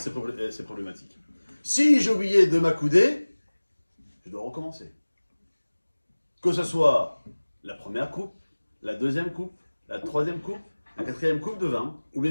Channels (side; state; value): both; inverted; correlation -1.00